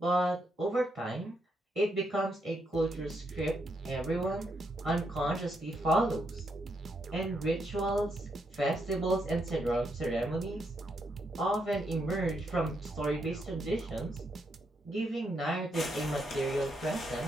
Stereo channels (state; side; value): normal; both; correlation 0.78